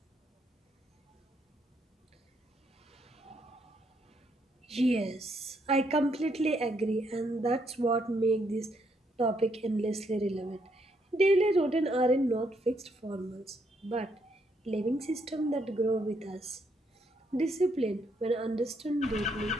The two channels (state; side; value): normal; both; correlation 0.74